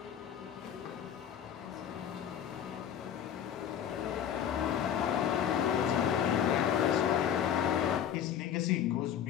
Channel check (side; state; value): right; quieter; 9.2 dB